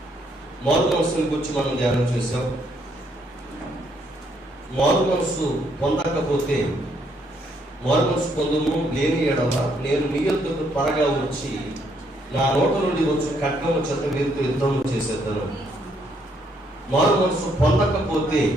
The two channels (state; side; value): normal; both; correlation 0.71